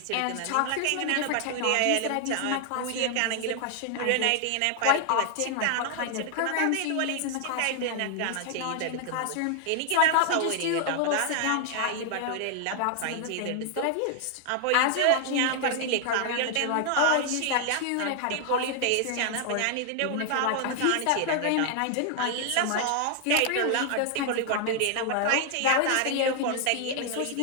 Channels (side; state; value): both; different; correlation 0.00